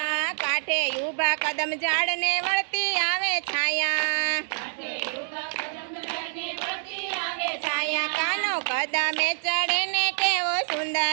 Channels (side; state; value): left; silent; digital silence